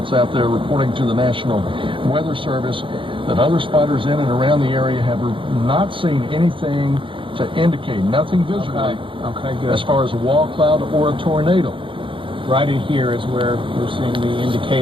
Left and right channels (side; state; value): left; late; 0.25 ms